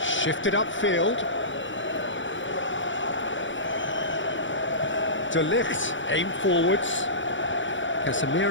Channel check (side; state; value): right; late; 0.55 ms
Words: shifted upfield. De Ligt aimed forwards.